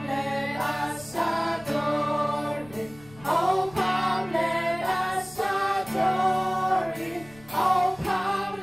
let us adore him. Oh, come, let us adore him. Oh, come,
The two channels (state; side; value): noise; left; rumble, 23 dB below the sound